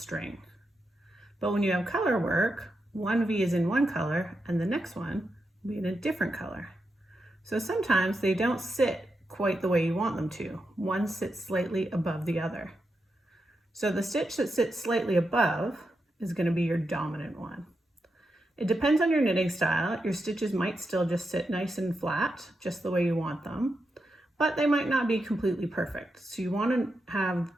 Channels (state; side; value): normal; both; correlation 0.86